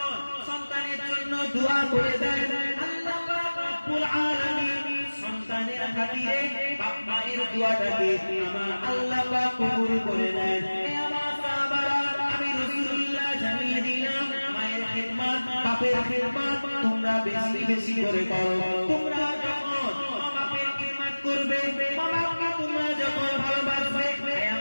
সন্তানের জন্য দোয়া করে দেয়, আল্লাহ পাক রব্বুল আলামিন সন্তানের খাতিরে বাবা-মায়ের দোয়াটাকে আমার আল্লাহ পাক কবুল করে নেন। হে আমার সাহাবারা, আমি রাসূলুল্লাহ জানিয়ে দিলাম, মায়ের খিদমত, বাপের খিদমত তোমরা বেশি বেশি করে করো। তোমরা যখন বাপের খিদমত করবে, বাবাকে তোমরা যখন ভালোবাসবে, হে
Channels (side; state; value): both; inverted; correlation -1.00